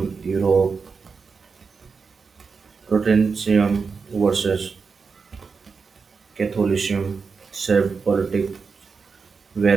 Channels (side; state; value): left; quieter; 5.1 dB